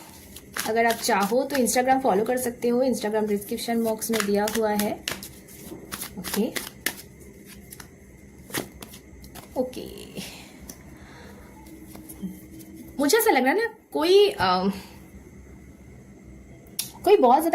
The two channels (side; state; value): both; identical; correlation 1.00